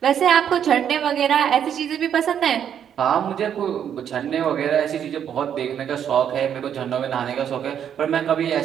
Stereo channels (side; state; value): left; quieter; 8.9 dB